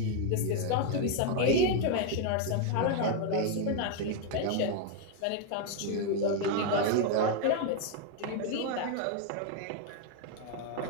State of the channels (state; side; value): different; both; correlation 0.01